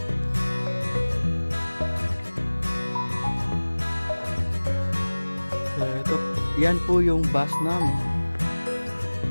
So, yan po yung bus namin.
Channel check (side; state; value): both; inverted; correlation -1.00